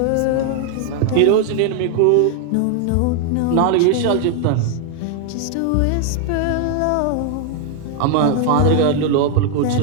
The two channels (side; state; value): both; different; correlation 0.00